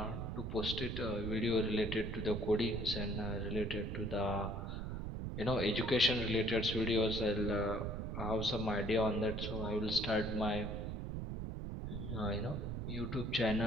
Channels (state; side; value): noise; right; rumble, 4 dB below the sound